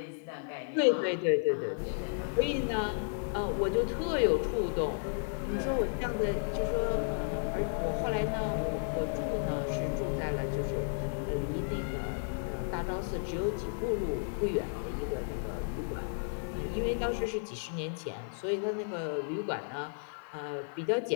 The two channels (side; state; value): right; silent; digital silence